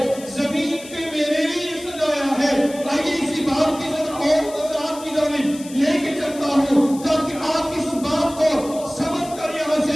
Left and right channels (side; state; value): left; noise; hiss, 17 dB below the sound